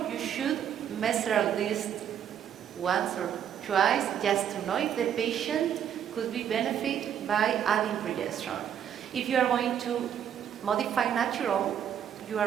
you should measure at least once or twice just to know if the patient could be benefited by adding progesterone. If you are going to modify natural, you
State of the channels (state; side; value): quieter; left; 9.3 dB